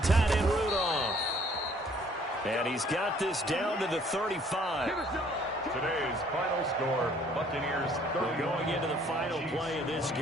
end Rudolph. And he's got this down to the 35. Today's final score, Buccaneers 30. Going into the final play of this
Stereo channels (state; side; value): normal; both; correlation 0.59